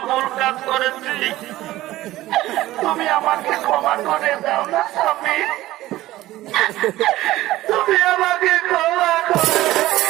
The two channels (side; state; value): left; quieter; 16.2 dB